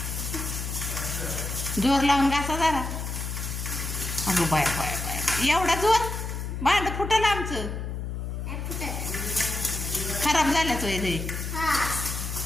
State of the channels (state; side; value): noise; left; hum, 5 dB below the sound